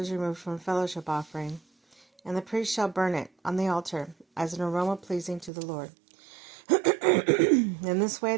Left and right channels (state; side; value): drops out; left; at 5.5 s